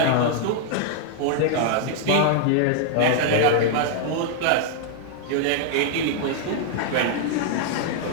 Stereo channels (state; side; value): different; both; correlation -0.01